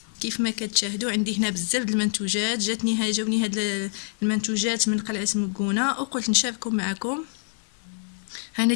كيف ما كتشاهدوا عندي هنا بزاف د المنتوجات، جاوني هاد المنتوجات من قلعه مكونه وقلت نشاركهم معكم. انا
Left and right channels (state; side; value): silent; right; digital silence